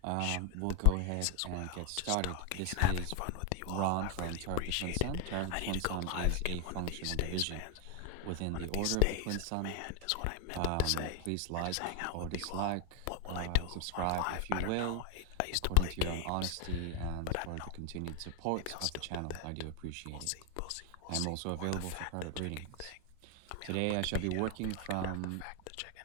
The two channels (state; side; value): different; both; correlation 0.00